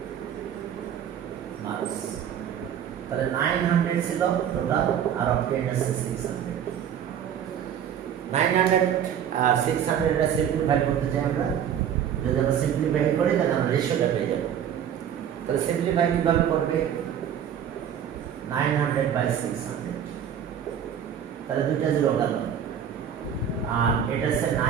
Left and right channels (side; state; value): left; quieter; 9.0 dB